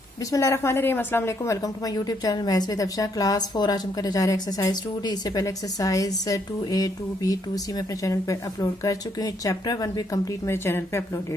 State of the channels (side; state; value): both; normal; correlation 0.73